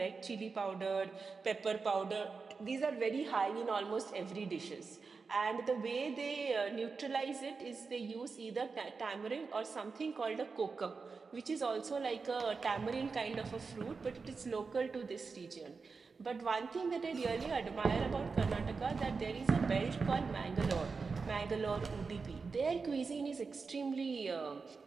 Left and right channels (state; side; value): quieter; left; 4.7 dB